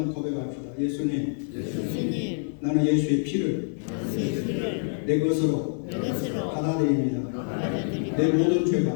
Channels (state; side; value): silent; right; 57 dB below the other